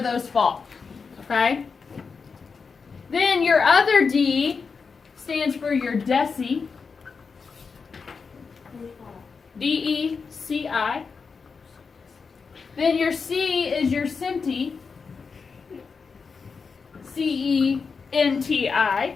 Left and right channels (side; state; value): right; quieter; 5.2 dB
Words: those fall. Okay? Then your other D stands for your deci. DECI. Then your C is your centi. CENTI.